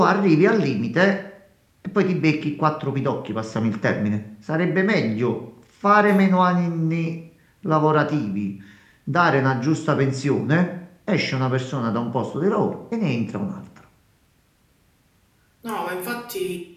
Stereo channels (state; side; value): identical; both; correlation 1.00